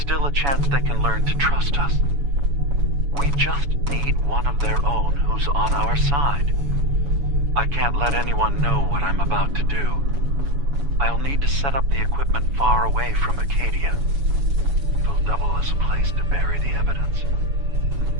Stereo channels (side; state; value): left; late; 7.1 ms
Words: a chance they can learn to trust us. We just need one of their own who's on our side. I can't let anyone know what I'm about to do. I'll need to set up the equipment far away from Acadia. It'll double as a place to bury the evidence.